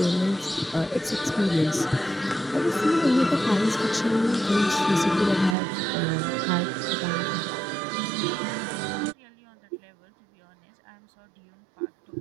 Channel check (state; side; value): drops out; left; at 5.6 s